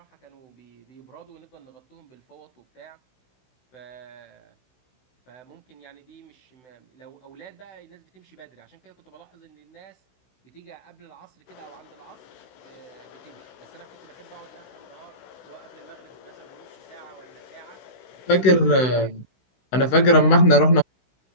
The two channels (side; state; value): right; late; 16 ms